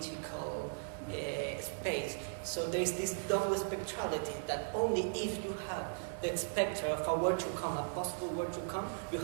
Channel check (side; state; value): left; silent; digital silence